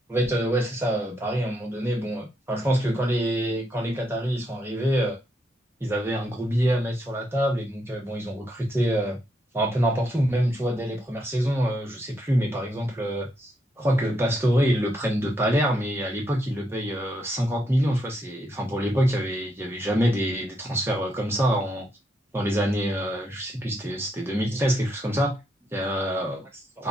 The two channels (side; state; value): both; normal; correlation 0.78